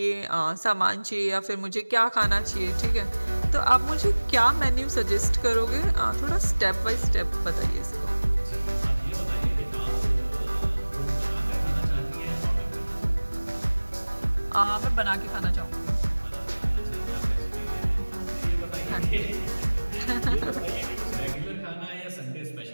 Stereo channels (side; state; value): both; inverted; correlation -1.00